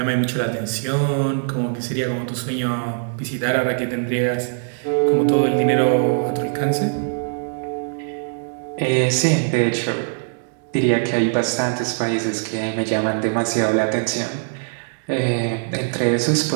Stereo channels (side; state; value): left; silent; digital silence